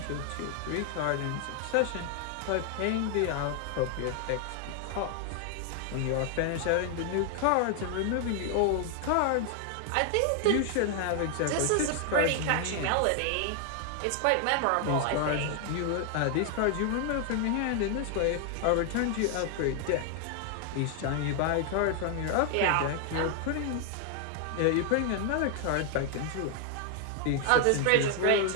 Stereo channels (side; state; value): both; different; correlation 0.00